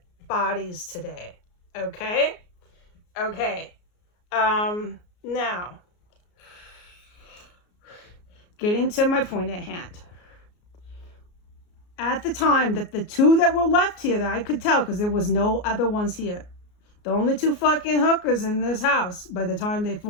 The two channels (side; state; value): right; late; 33 ms